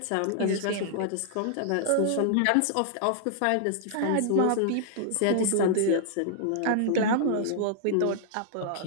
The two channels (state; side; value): different; both; correlation -0.01